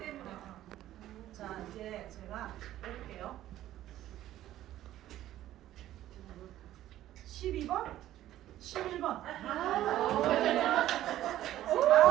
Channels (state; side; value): quieter; left; 13.4 dB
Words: 자, 이제 제가 해볼게요. 12번? 11번.